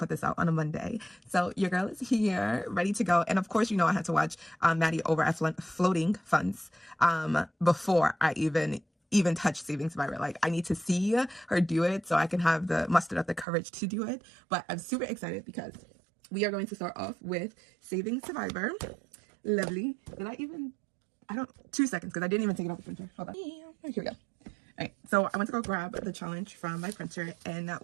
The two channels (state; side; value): drops out; left; at 13.5 s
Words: this out on a Monday. So your girl is here, ready to go, and of course, you know I had to watch Maddie over at Floating Funds before I even touch Saving Survivor. Like, I need to see her do it so I can have the muster up the courage to do it. But I'm super excited because we are going to start off with Saving Survivor. Lovely. I don't, 2 seconds because I didn't even take it off the printer. Hold on. Here we go. All right, so I went to go grab the challenge from my printer, and